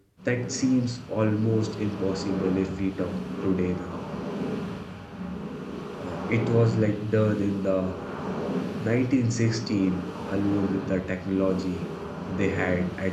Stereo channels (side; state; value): both; identical; correlation 1.00